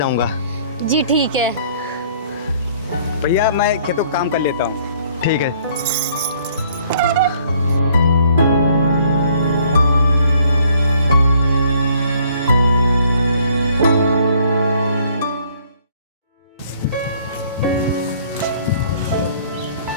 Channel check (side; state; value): both; inverted; correlation -0.61